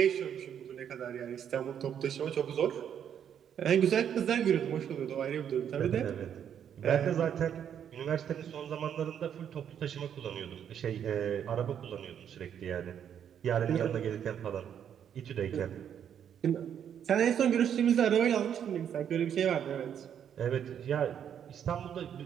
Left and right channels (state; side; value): quieter; left; 8.9 dB